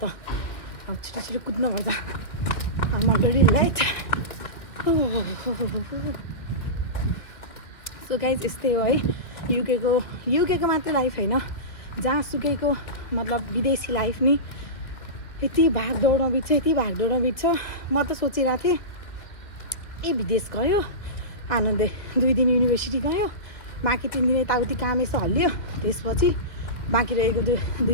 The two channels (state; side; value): late; right; 2.3 ms